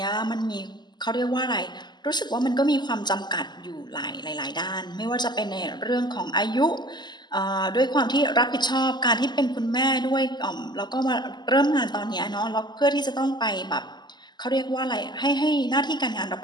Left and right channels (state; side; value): late; right; 0.21 ms